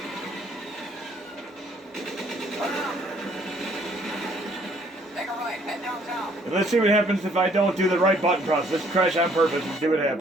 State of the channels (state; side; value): normal; both; correlation 0.63